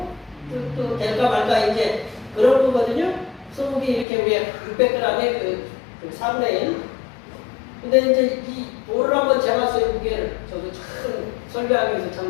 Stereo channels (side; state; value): right; drops out; at 4.0 s